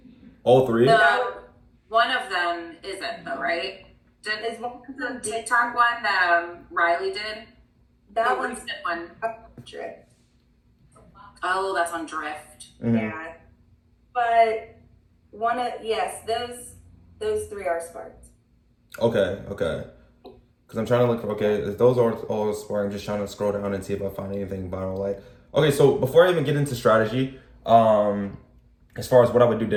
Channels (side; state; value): both; identical; correlation 1.00